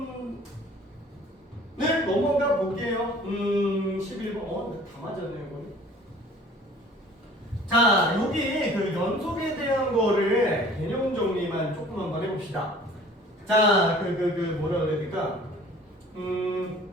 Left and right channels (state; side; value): normal; both; correlation 0.49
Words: 넘어가 볼게요. 11번. 다 맞았네요, 이거는. 자, 여기 그 연속에 대한 거를 개념 정리만 조금 한번 해봅시다. 자, 뭐라 그래야 될까?